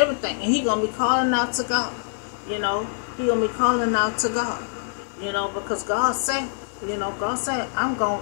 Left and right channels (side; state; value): right; silent; digital silence